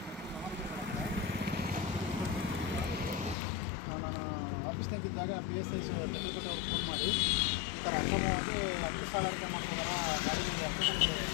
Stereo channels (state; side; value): drops out; right; at 3.4 s